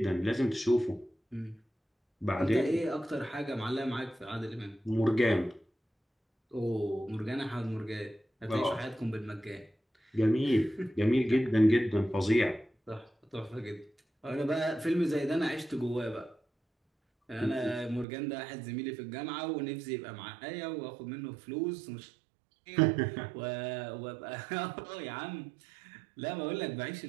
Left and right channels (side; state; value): left; drops out; at 18.1 s